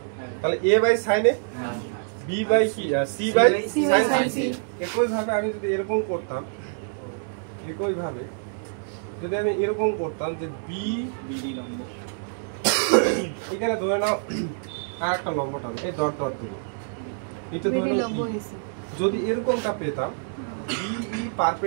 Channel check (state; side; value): silent; left; digital silence